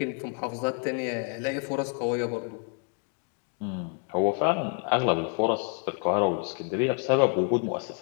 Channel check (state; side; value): quieter; right; 39.2 dB